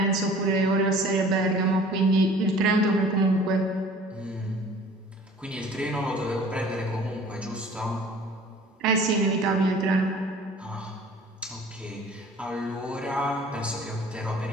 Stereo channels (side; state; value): both; normal; correlation 0.48